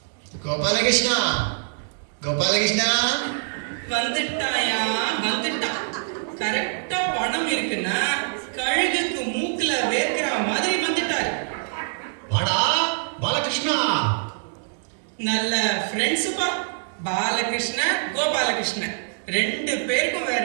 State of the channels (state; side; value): silent; left; digital silence